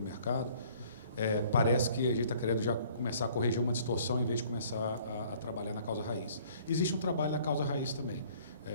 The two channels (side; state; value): both; inverted; correlation -0.56